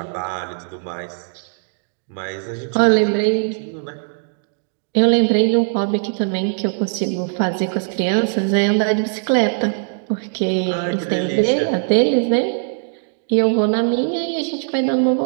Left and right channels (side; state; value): left; silent; digital silence